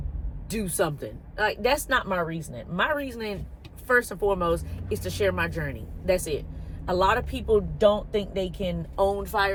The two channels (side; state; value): both; identical; correlation 1.00